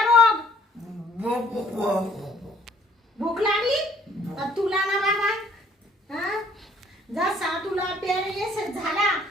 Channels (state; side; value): normal; both; correlation 0.59